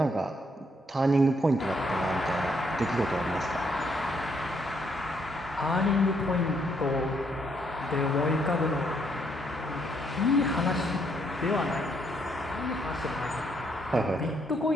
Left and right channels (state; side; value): normal; both; correlation 0.72